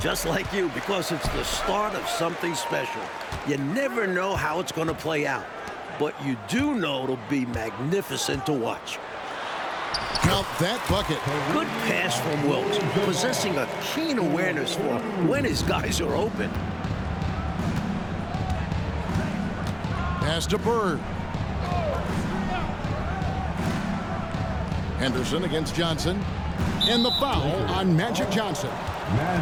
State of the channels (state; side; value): identical; both; correlation 1.00